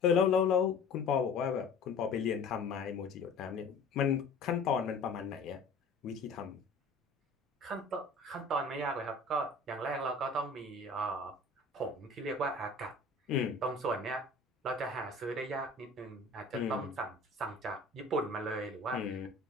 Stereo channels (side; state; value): right; quieter; 3.3 dB